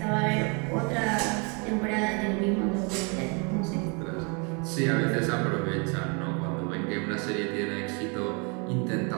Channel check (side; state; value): left; quieter; 34.0 dB